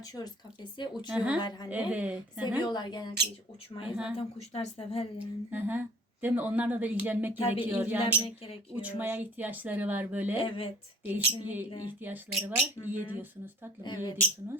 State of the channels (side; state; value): both; normal; correlation 0.50